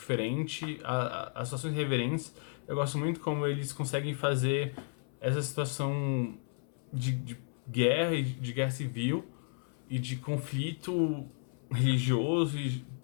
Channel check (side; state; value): right; silent; 56 dB below the other